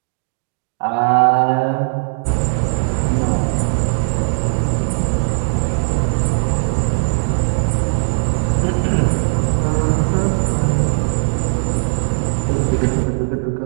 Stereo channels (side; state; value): left; silent; digital silence